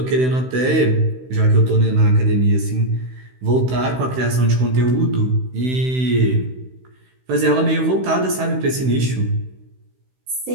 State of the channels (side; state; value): left; late; 16 ms